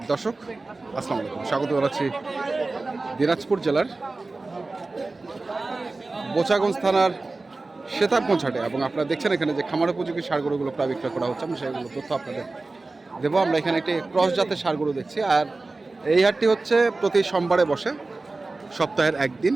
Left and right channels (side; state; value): left; quieter; 3.4 dB